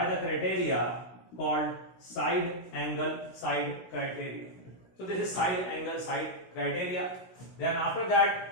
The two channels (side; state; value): right; late; 16 ms